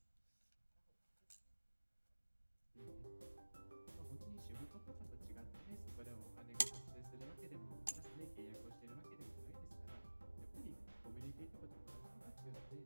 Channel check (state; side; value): inverted; both; correlation -1.00